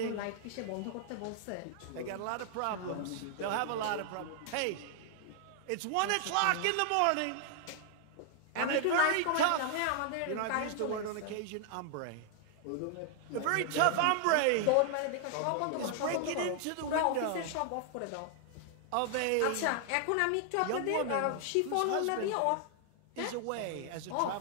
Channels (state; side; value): different; both; correlation 0.00